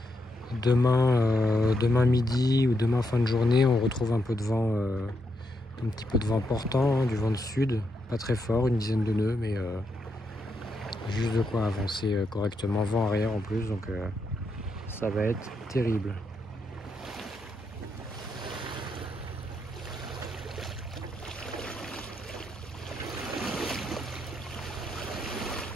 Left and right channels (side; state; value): both; normal; correlation 0.81